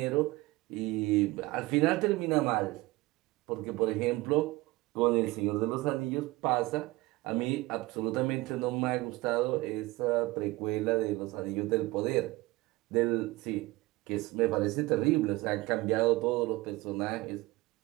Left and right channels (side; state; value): left; quieter; 20.8 dB